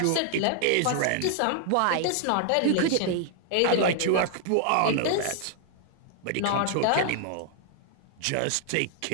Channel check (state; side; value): different; both; correlation 0.00